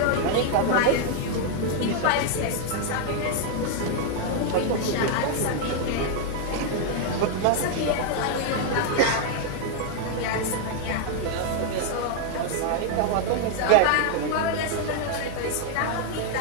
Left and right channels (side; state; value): both; different; correlation 0.00